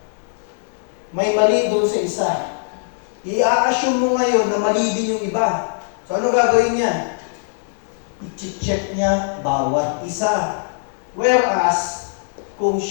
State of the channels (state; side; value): silent; right; digital silence